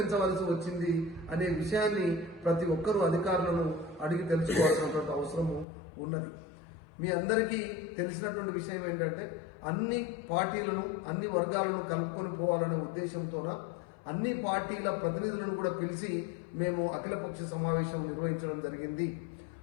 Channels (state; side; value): drops out; right; at 5.7 s